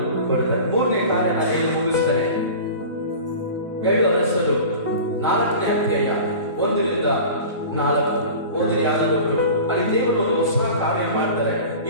ಕೊಡ್ತಾರೆ. ಮೂರನೇ ಕಾರ್ಯ ನಾನು ಏನು ಮುಗಿಸ್ತಾರೆ, 7 ವರ್ಷದ 4ನೇ ಅಧ್ಯಾಯ 1-4 ಓದಿರಿ. ಯಾರಾದರೂ ಅಲ್ಲಿ ದೇವರು ಒಂದು ಹೊಸ ಕಾರ್ಯ ಮಾಡ್ತಾರೆ.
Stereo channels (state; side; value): inverted; both; correlation -0.37